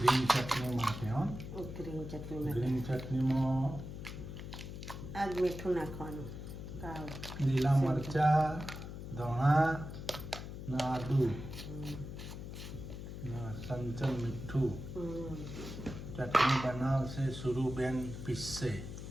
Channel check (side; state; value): left; noise; hum, 9 dB below the sound